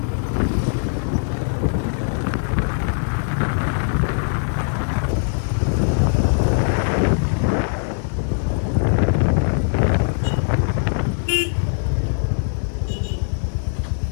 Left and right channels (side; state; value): right; silent; digital silence